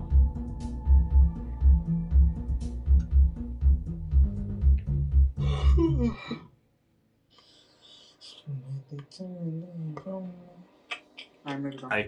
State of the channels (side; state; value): both; identical; correlation 1.00